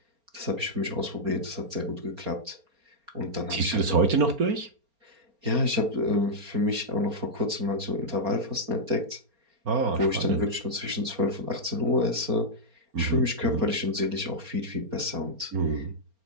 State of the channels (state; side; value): late; left; 4.3 ms